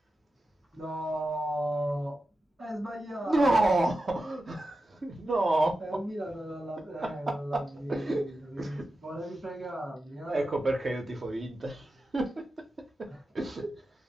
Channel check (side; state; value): both; normal; correlation 0.92